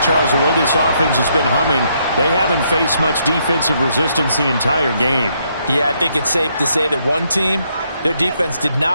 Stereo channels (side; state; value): both; inverted; correlation -0.74